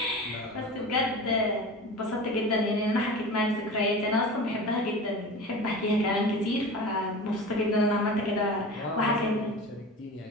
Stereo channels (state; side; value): normal; both; correlation 0.33